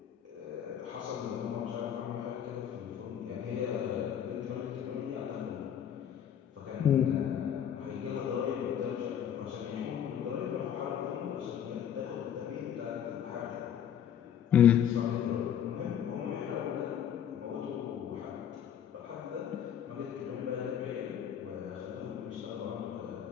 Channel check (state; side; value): quieter; right; 9.3 dB